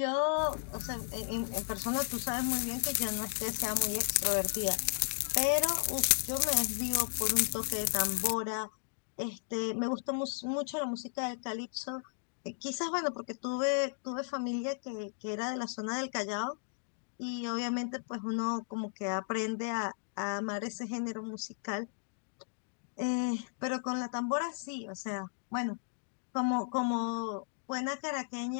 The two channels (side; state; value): right; silent; digital silence